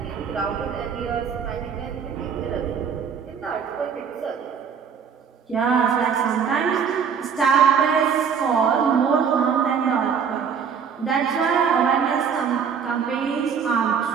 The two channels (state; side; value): quieter; left; 6.8 dB